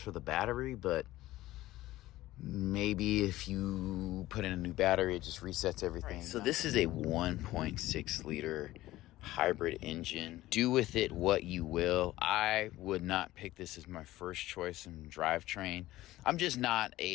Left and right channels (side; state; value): right; quieter; 16.4 dB